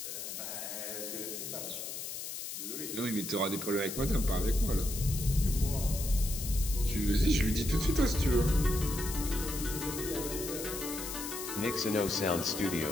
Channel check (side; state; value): left; noise; hiss, 7 dB below the sound